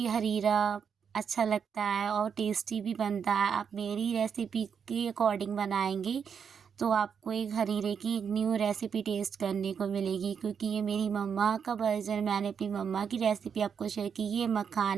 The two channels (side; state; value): left; quieter; 7.0 dB